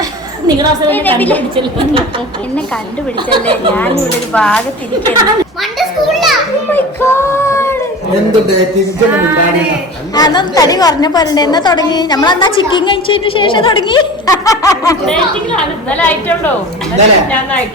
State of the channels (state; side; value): normal; both; correlation 0.35